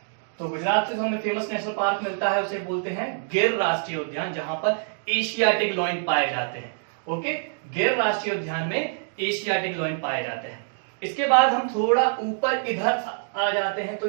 तो गुजरात से जो हमें फेमस नेशनल पार्क मिलता है उसे बोलते हैं गिर राष्ट्रीय उद्यान, जहां पर एशियाटिक लॉयन पाए जाते हैं। ओके, गिर राष्ट्रीय उद्यान में एशियाटिक लॉयन पाए जाते हैं। इसके बाद हम थोड़ा ऊपर इधर आ जाते हैं, तो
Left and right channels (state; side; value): silent; left; digital silence